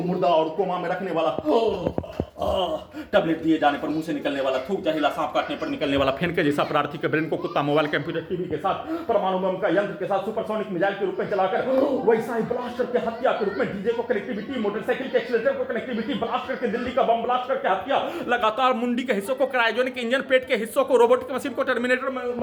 मुर्दा और कोमा में रखने वाला टैबलेट दिए जाने पर मुंह से निकलने वाला थूक, जहरीला सांप काटने पर निकलने वाला फेन के जैसा प्रार्थी के ब्रेन को कुत्ता, मोबाइल, कंप्यूटर, टीवी के साथ परमाणु बम का यंत्र के साथ सुपरसोनिक मिसाइल के रूप में चलाकर वैसा ही ब्लास्ट करके हत्या के रूप में डीजे को कनेक्टिविटी, मोटरसाइकिल के एक्सीलरेटर को कनेक्टिविटी, ब्लास्ट करके दिल्ली का बम ब्लास्ट करके हत्या, लगातार मुंडी के हिस्सों को क्रायोजेनिक इंजन, पेट के हिस्सों को रोबोटिक मशीन को, टर्मिनेटर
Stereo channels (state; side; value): identical; both; correlation 1.00